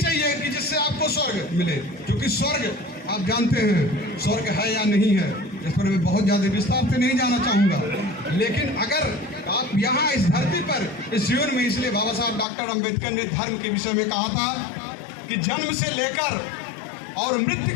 कि जिससे आपको स्वर्ग मिले, क्योंकि स्वर्ग आप जानते हैं स्वर्ग है या नहीं है, इस पर मैं बहुत ज्यादा विस्तार से नहीं जाना चाहूंगा। लेकिन अगर आप यहाँ इस धरती पर, इस जीवन में, इसलिए बाबा साहब डॉक्टर अम्बेडकर ने धर्म के विषय में कहा था कि जन्म से लेकर और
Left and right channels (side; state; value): right; drops out; at 12.5 s